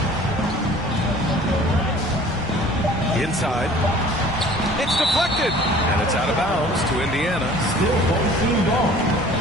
Inside. It's deflected. And it's out of bounds to Indiana. Still home team ball.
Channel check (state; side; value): normal; both; correlation 0.49